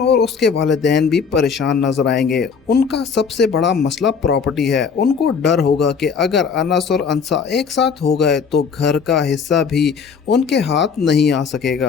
उसके वालिदैन भी परेशान नजर आएंगे। उनका सबसे बड़ा मसला प्रॉपर्टी है। उनको डर होगा कि अगर अनस और अंसा एक साथ हो गए तो घर का हिस्सा भी उनके हाथ नहीं आ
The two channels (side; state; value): right; quieter; 6.0 dB